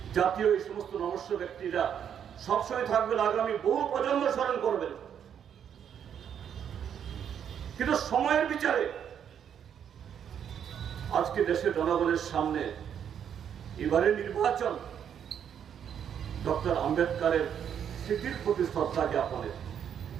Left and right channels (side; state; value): left; quieter; 8.6 dB